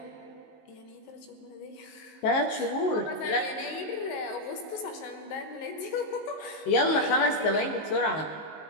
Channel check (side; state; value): right; late; 19 ms